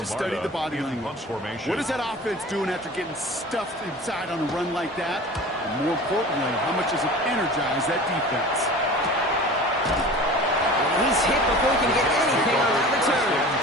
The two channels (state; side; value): normal; both; correlation 0.39